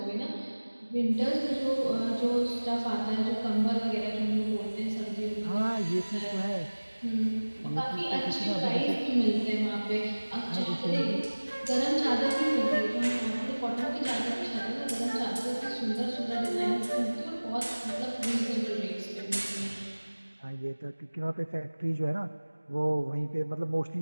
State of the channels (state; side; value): inverted; both; correlation -1.00